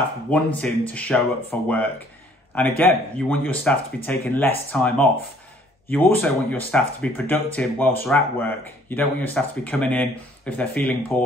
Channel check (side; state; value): both; normal; correlation 0.59